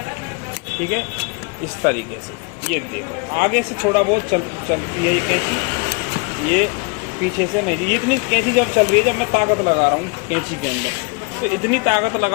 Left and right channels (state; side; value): quieter; right; 30.9 dB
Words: ठीक है, इस तरीके से। ये देखो आगे से थोड़ा बहुत चलती है ये कैंची, ये पीछे से नहीं। ये इतनी कैंची जब चल रही है, जब मैं ताकत लगा रहा हूँ कैंची के अंदर, तो इतनी ताकत